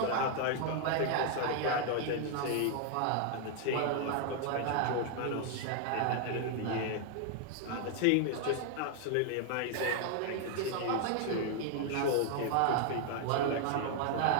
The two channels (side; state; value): both; different; correlation 0.00